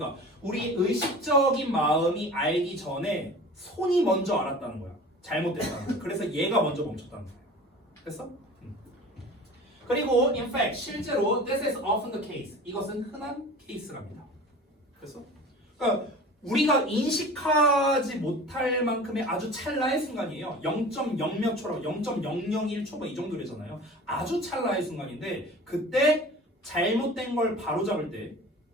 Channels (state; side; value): normal; both; correlation 0.40